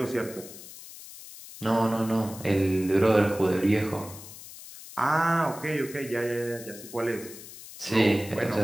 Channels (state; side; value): noise; left; hiss, 15 dB below the sound